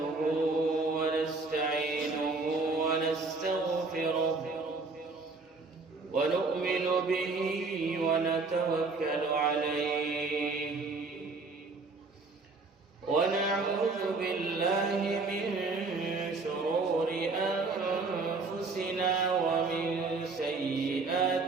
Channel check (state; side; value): quieter; left; 3.9 dB